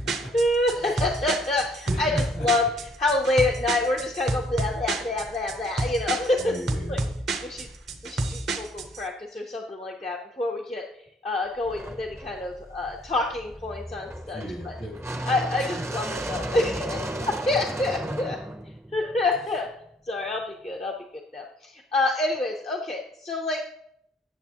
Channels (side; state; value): both; normal; correlation 0.62